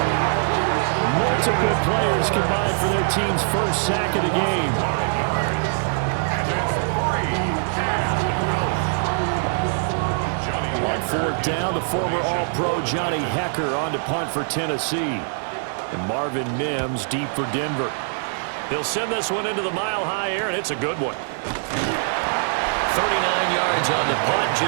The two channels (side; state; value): left; silent; digital silence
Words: Multiple players combined for their team's first sack of the game. On 4th down, the former All-Pro Johnny Hecker on to punt for Tennessee. And Marvin Mims deep for Denver. He'll send this one into the Mile High air, and it's a good one. 39 yards on the punt,